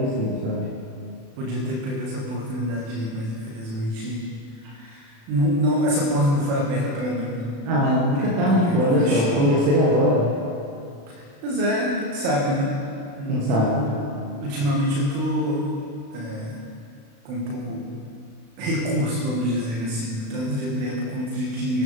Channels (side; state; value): left; late; 36 ms